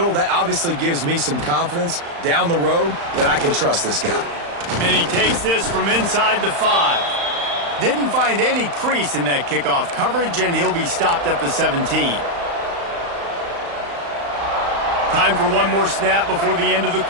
that obviously gives me some confidence down the road that I can trust this guy. And he takes this from inside the 5. Didn't find any crease in that kickoff coverage, and he'll be stopped at the 17. Time for one more snap before the end of the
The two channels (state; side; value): late; left; 35 ms